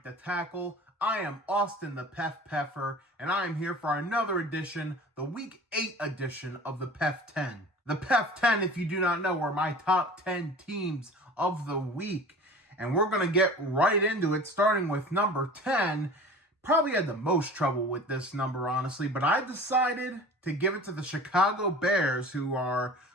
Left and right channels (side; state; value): both; normal; correlation 0.40